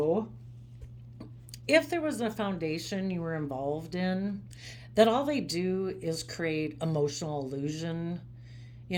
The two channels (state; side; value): identical; both; correlation 1.00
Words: If there was a foundation you were involved in, that all they do is create emotional illusion.